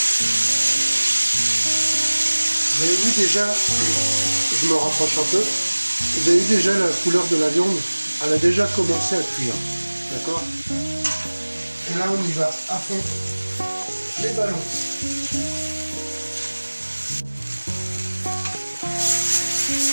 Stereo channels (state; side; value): inverted; both; correlation -1.00